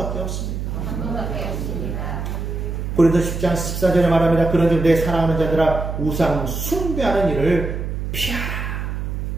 없습니다. 고린도서 10장 14절에 말합니다. 그런즉 내 사랑하는 자들아 우상 숭배하는 일을 피하라.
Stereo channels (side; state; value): right; noise; hum, 4 dB below the sound